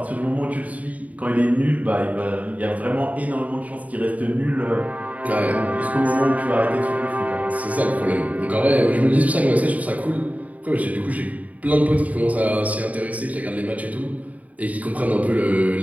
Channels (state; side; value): late; left; 0.071 ms